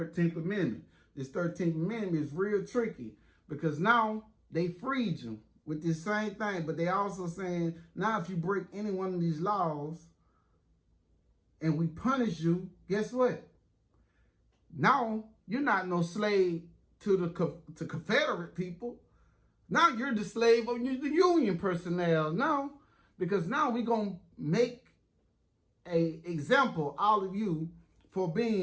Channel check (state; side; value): identical; both; correlation 1.00